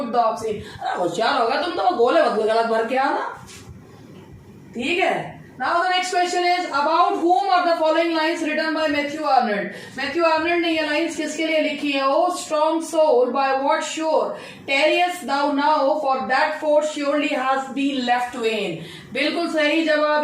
द ऑब्सीन। अरे होशियार होगा तुम तो, गोले गलत भर के आना। ठीक है। Now the next question is, about whom are the following lines written by Matthew Arnold? Matthew Arnold ने ये lines किसके लिए लिखी है? Oh strong soul, by what shore tarriest thou now, for that force surely has been left vain. बिल्कुल सही जवाब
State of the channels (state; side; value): identical; both; correlation 1.00